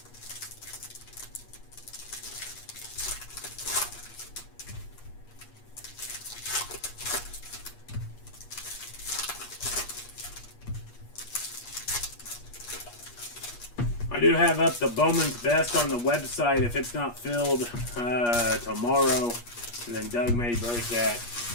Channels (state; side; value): late; right; 8.4 ms